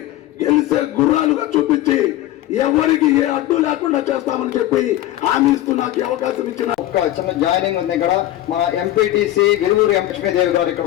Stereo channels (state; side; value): quieter; right; 14.5 dB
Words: గెలిసే గుర్రాలుగా చూపించి ఎవరికి ఏ అడ్డు లేకుండా చేస్తామని చెప్పి హామీ ఇస్తూ నాకు అవకాశం ఇచ్చిన ఒక చిన్న జాయినింగ్ ఉంది. ఇక్కడ మా ఎంపీటీసీ విలువూరు లక్ష్మీదేవి గారు ఇక్కడ